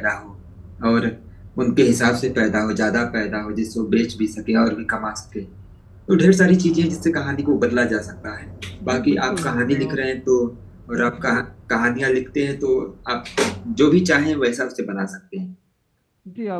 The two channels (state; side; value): identical; both; correlation 1.00